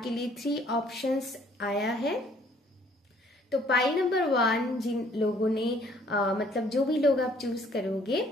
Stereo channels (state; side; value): normal; both; correlation 0.60